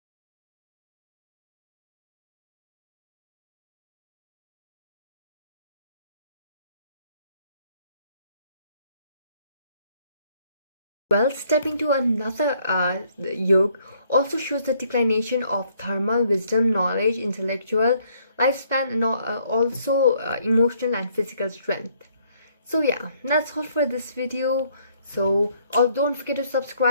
Well, stepping to another yoke also shows the declination of thermal wisdom, knowledge, intellectual lifespan, and also emotional and physical strength. So yeah, that's all for this video. So don't forget to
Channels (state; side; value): inverted; both; correlation -0.66